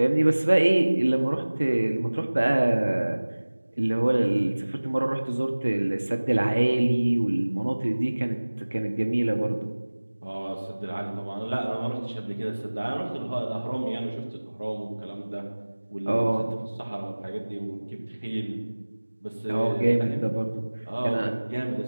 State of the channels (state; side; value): inverted; both; correlation -1.00